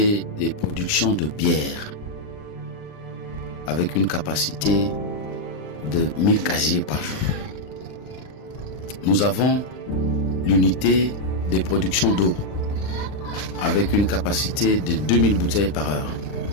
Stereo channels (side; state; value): right; late; 39 ms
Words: de production de bière avec une capacité de 1000 casiers par jour. Nous avons l'unité de production d'eau avec une capacité de 2000 bouteilles par heure.